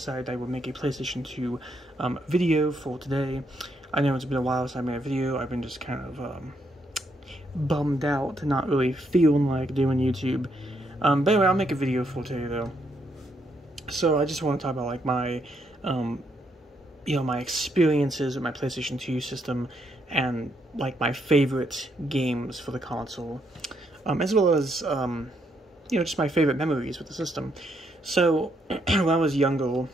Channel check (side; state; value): both; normal; correlation 0.76